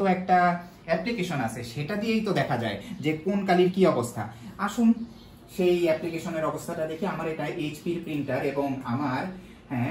একটা অ্যাপ্লিকেশন আছে, সেটা দিয়েই তো দেখা যায় যে কোন কালির কি অবস্থা। আসুন সেই অ্যাপ্লিকেশনের অবস্থাটা দেখি। আমার এটা HP প্রিন্টার এবং আমার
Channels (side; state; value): both; identical; correlation 1.00